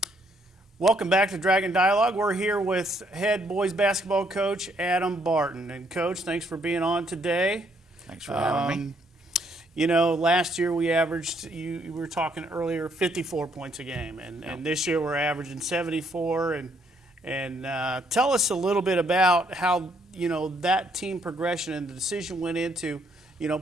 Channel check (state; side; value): normal; both; correlation 0.70